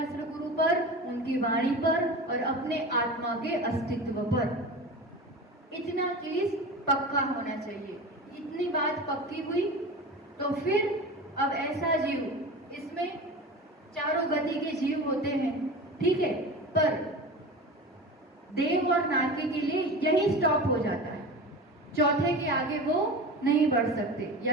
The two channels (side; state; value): both; normal; correlation 0.31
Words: गुरु पर, उनकी वाणी पर और अपने आत्मा के अस्तित्व पर। इतना चीज पक्का होना चाहिए। इतनी बात पक्की हुई तो फिर अब ऐसा जीव, इसमें चारों गति के जीव होते हैं, ठीक है, पर देव और नारकी के लिए यही स्टॉप हो जाता है। चौथे के आगे वो नहीं बढ़ सकते,